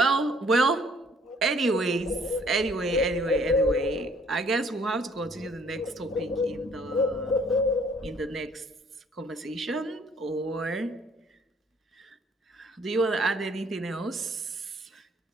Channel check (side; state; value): both; normal; correlation 0.60